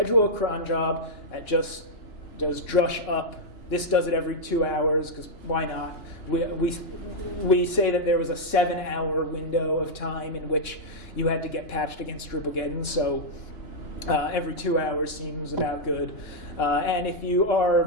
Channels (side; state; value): right; late; 2.9 ms